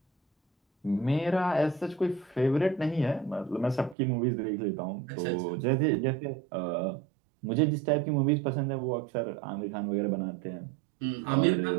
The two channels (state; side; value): drops out; left; at 4.0 s